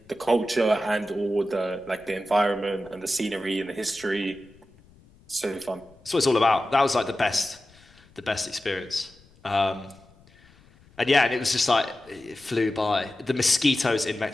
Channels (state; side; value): noise; left; rumble, 28 dB below the sound